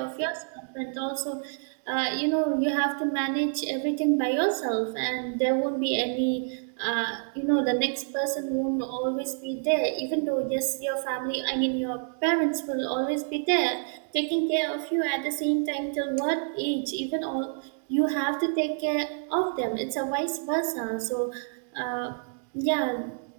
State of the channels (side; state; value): left; silent; digital silence